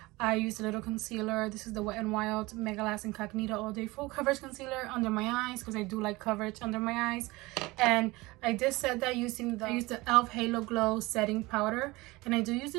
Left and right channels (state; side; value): quieter; left; 21.7 dB